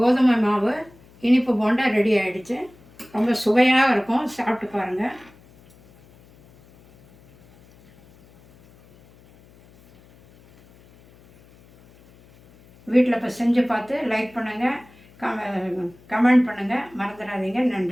மாவு இனிப்பு போண்டா ரெடி ஆகிடுச்சு. ரொம்ப சுவையாக இருக்கும், சாப்பிட்டு பாருங்கள். வீட்டில் இப்போ செஞ்சு பார்த்து லைக் பண்ணுங்கள், கமெண்ட் பண்ணுங்கள், மறந்துடாதீங்க.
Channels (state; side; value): noise; left; hum, 27 dB below the sound